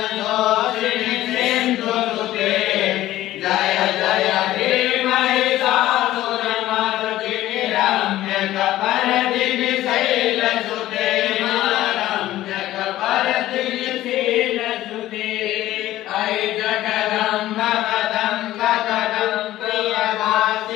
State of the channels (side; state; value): right; quieter; 14.8 dB